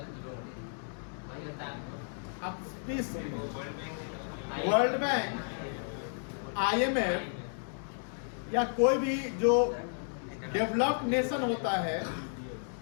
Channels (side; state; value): right; silent; digital silence